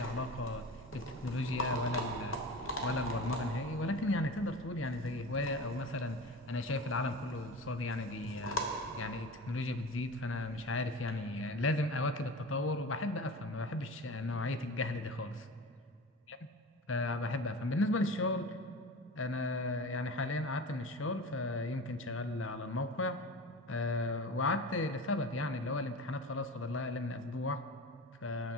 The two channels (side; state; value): both; normal; correlation 0.32